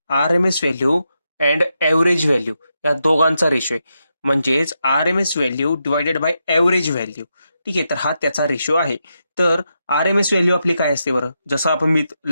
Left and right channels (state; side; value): inverted; both; correlation -0.85